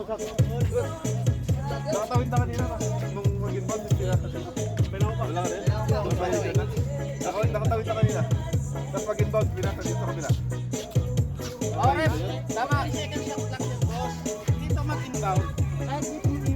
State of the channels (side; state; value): both; identical; correlation 1.00